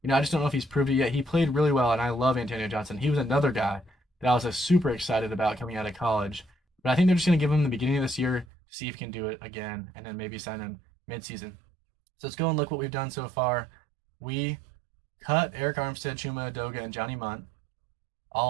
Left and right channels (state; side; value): drops out; left; at 8.5 s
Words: I just don't know if he's proved it yet. He played really well, and I love Antonio Johnson. He was another guy that I was super excited about coming out of college. But I think they're just going to give him the beginning of this year to see if he can do it again, and then maybe sign him mid-season. So let's go and look what we've done so far. We cut Eric Armstead, Chuma Edoga, and Johnny Munt.